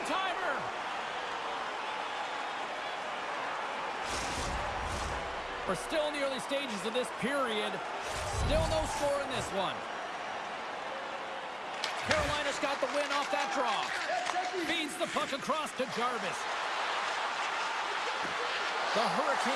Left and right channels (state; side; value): identical; both; correlation 1.00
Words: We're still in the early stages of this period. Still no score in this one. Carolina's got the win off that draw. Feeds the puck across to Jarvis. The